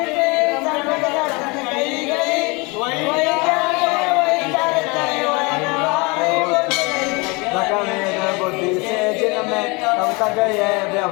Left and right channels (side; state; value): right; quieter; 27.5 dB